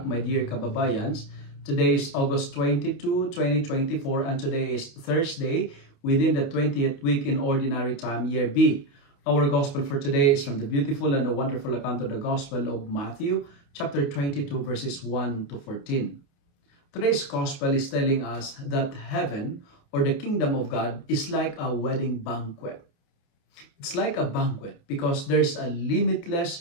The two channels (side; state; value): right; late; 29 ms